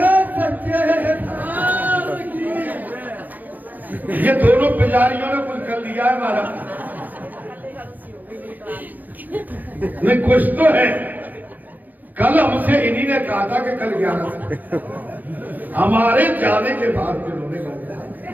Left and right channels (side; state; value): left; late; 0.083 ms